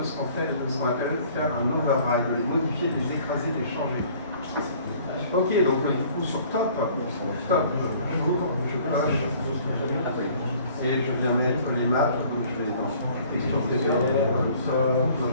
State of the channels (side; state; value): both; inverted; correlation -0.54